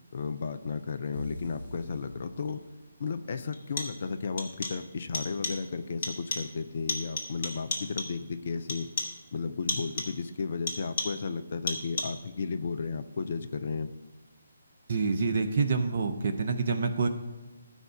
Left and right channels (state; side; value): inverted; both; correlation -0.77